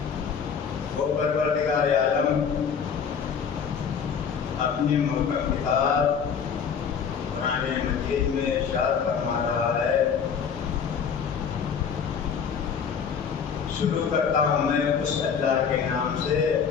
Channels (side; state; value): right; quieter; 6.8 dB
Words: وہ پروردگار عالم اپنی محکم کتاب قرآن مجید میں ارشاد فرما رہا ہے، شروع کرتا ہوں میں اس اللہ کے نام سے